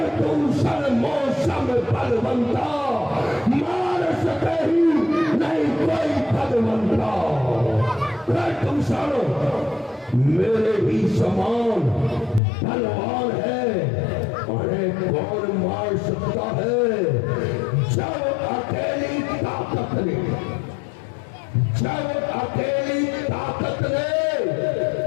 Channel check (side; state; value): right; drops out; at 12.4 s